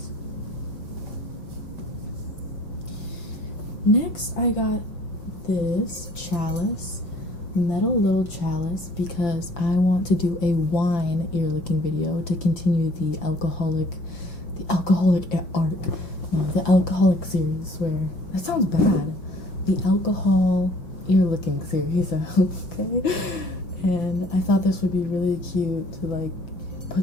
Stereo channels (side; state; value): right; late; 5.8 ms